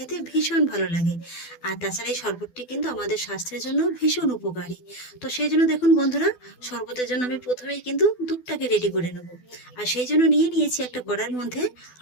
ভীষণ ভালো লাগে। আর তাছাড়া এই শরবতটি কিন্তু আমাদের স্বাস্থ্যের জন্য ভীষণ উপকারী। তো সেই জন্য দেখুন বন্ধুরা, শরবতের জন্য আমি প্রথমেই কিন্তু দুধটাকে রেডি করে নেব। আর সেই জন্য নিয়েছি একটা কড়াইয়ের মধ্যে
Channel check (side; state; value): right; late; 12 ms